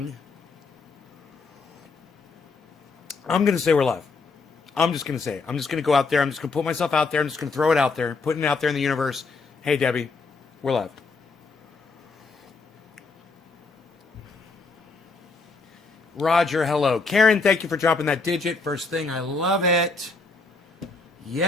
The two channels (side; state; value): right; quieter; 4.1 dB